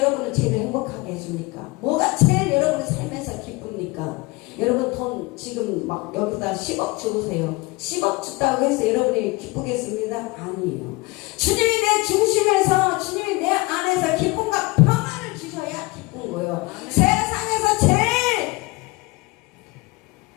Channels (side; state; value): right; quieter; 23.9 dB